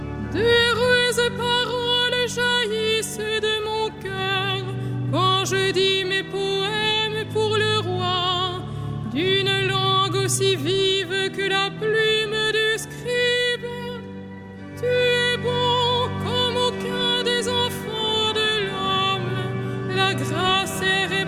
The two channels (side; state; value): both; identical; correlation 1.00